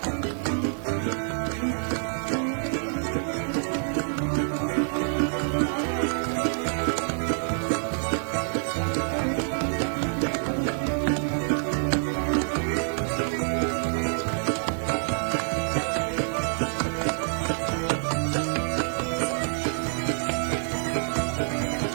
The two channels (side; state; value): left; silent; 60 dB below the other